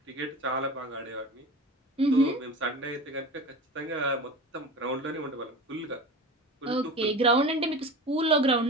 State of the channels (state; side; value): normal; both; correlation 0.32